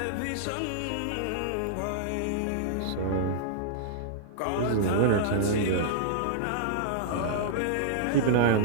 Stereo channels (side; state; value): both; different; correlation -0.02